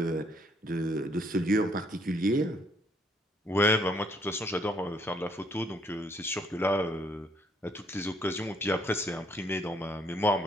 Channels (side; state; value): both; normal; correlation 0.67